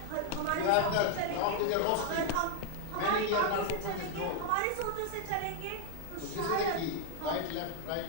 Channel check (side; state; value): both; different; correlation 0.00